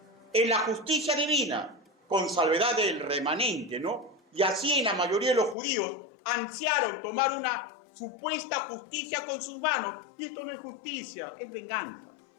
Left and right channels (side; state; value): right; drops out; at 5.6 s